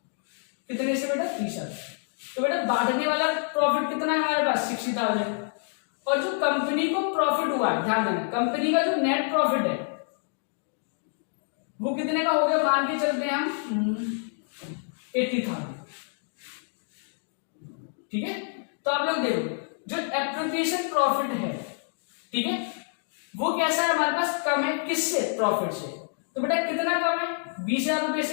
कितने से बेटा 30,000। तो बेटा बांटने वाला प्रॉफिट कितना है हमारे पास 60,000, और जो कंपनी को प्रॉफिट हुआ है, ध्यान देना, कंपनी का जो नेट प्रॉफिट है वो कितने का हो गया, मान के चलते हैं हम 80,000, ठीक है। तो आप लोग देखो जो एप्रोप्रिएशन प्रॉफिट है, ठीक है, वो कैसा है हमारे पास, कम है किससे, प्रॉफिट से। तो बेटा कितना कम है, 20,000 रुपए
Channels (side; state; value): right; silent; 58 dB below the other